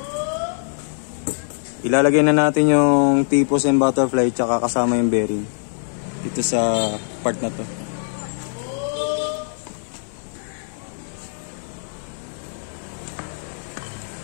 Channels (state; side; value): silent; right; 58 dB below the other